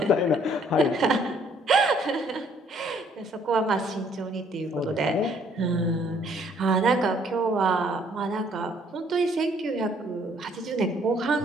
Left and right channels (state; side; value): normal; both; correlation 0.63